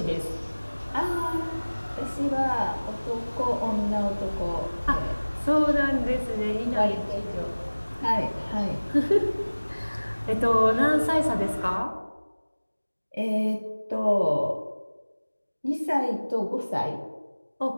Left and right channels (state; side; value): inverted; both; correlation -1.00